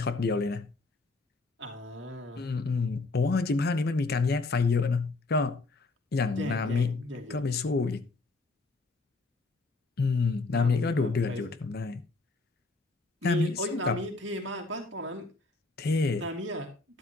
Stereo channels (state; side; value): quieter; right; 3.4 dB